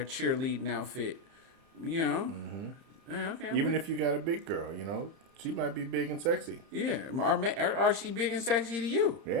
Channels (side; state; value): left; late; 30 ms